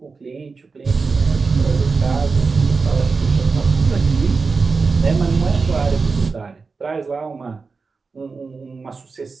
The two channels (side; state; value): left; quieter; 4.5 dB